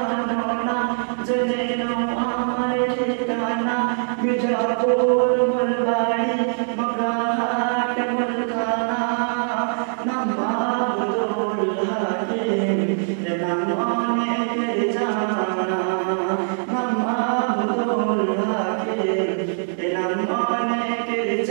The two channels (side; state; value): left; silent; 60 dB below the other